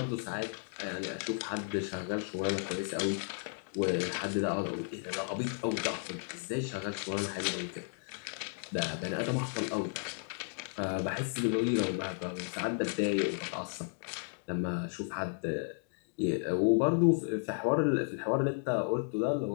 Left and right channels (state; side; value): silent; right; 55 dB below the other